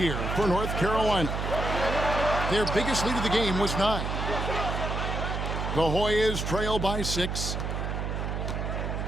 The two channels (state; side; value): noise; right; hum, 2 dB below the sound